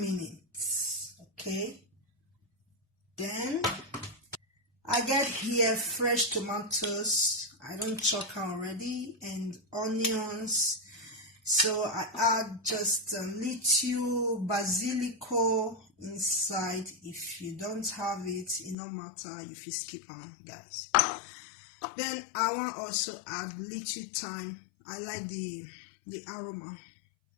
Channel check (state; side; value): drops out; right; at 18.8 s